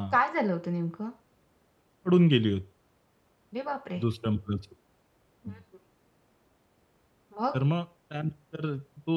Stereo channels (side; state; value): both; identical; correlation 1.00